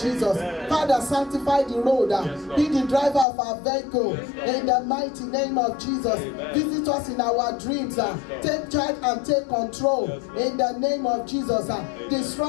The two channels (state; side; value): drops out; right; at 3.2 s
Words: Father, sanctify the road, be the driver of our vehicle in the mighty name of Jesus. Visit us in our dreams, take charge and take control in the name of Jesus.